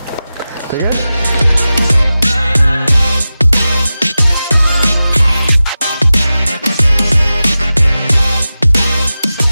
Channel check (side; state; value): both; inverted; correlation -0.94